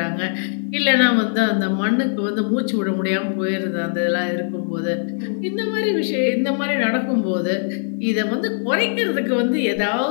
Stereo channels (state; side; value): silent; right; 65 dB below the other